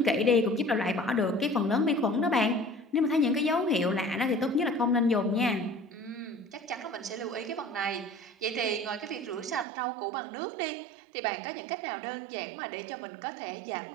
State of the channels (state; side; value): drops out; left; at 9.7 s